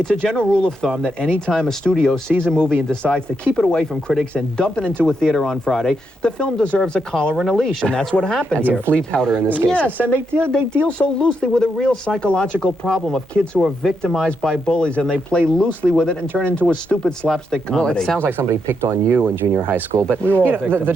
a general rule of thumb that any time a studio sees a movie and decides to keep it away from critics and dump it into a theater on Friday, the film deserves a collar and a leash, and that's what happened here. And some flea powder in this case. Yes, and they deal so loosely with a real psychological problem of kids who are victimized by bullies, and they play loosely with it and turn into a stupid slapstick comedy. Well, it sounds like somebody picked on you in junior high school, but we were all you know,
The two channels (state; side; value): normal; both; correlation 0.81